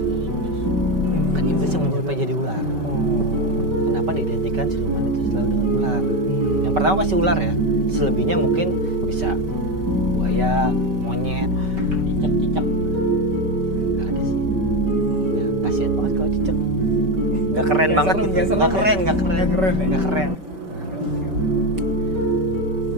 iblis. Kan iblis yang menyerupai jadi ular. Kenapa diidentikan siluman itu selalu dengan ular? Yang pertama pasti ular ya. Selebihnya mungkin bisa buaya, monyet. Cicak. Nggak ada sih. Ya kasihan banget kalau cicak. Nggak keren Nggak banget serem, gitu. nggak serem Nggak ya? keren. Nggak keren ya? Nggak keren.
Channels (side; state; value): left; late; 5.2 ms